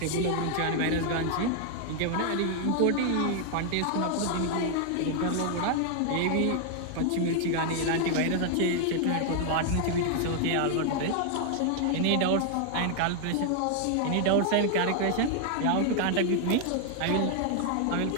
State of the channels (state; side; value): different; both; correlation 0.00